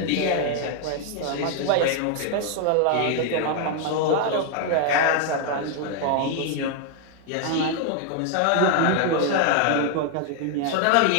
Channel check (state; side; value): different; both; correlation 0.00